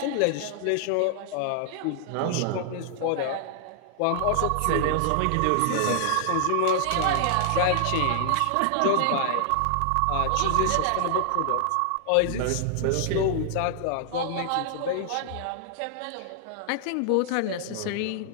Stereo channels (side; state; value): both; different; correlation -0.01